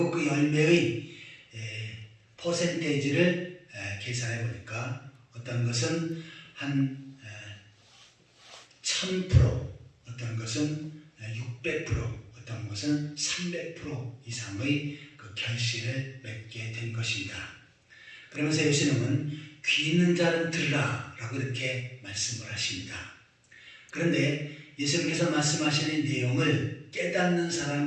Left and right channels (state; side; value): identical; both; correlation 1.00